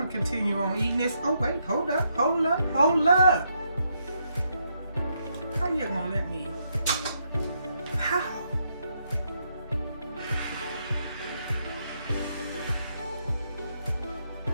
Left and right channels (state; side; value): inverted; both; correlation -0.78